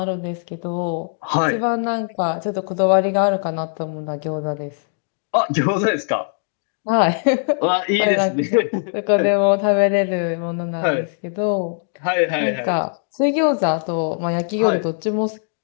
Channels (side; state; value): right; silent; digital silence